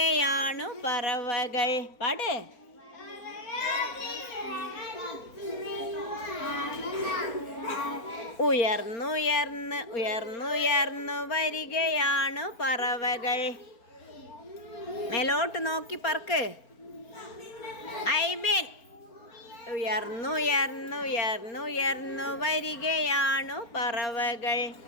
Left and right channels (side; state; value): right; late; 4.4 ms